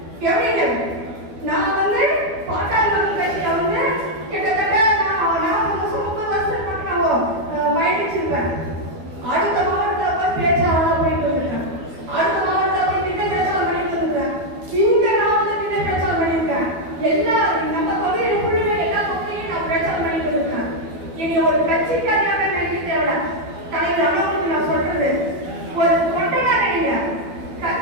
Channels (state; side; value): late; left; 12 ms